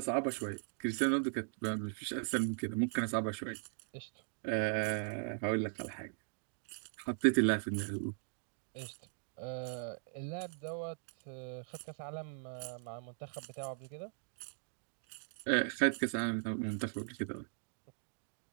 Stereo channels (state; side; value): silent; left; digital silence